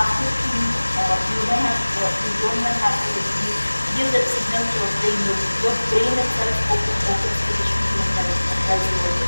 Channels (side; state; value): both; inverted; correlation -1.00